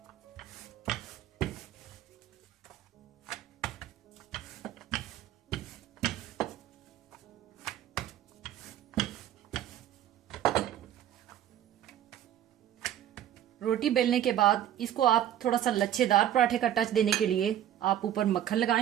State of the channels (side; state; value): left; quieter; 11.2 dB